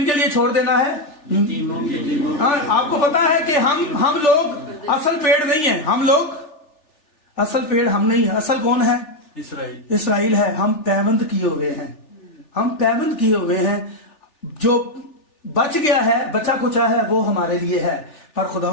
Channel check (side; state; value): right; late; 3.4 ms